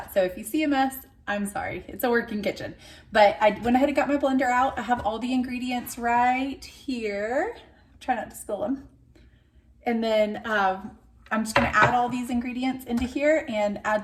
So if you see a mess, I'm sorry, it's a working kitchen. But I went ahead and got my blender out. I have all the ingredients right here. Try not to spill them. And then I'm just gonna add all these ingredients into here and add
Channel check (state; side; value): identical; both; correlation 1.00